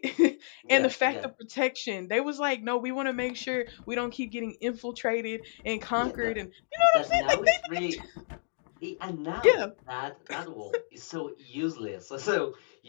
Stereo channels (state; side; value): silent; right; digital silence